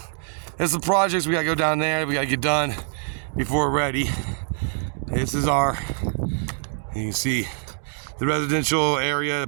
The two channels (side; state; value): left; silent; 62 dB below the other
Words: there's some projects we gotta go down there. We gotta get done before we're ready. This is you can see the residential area, the